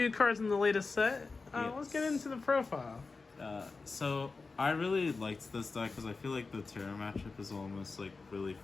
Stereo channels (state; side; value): quieter; right; 4.1 dB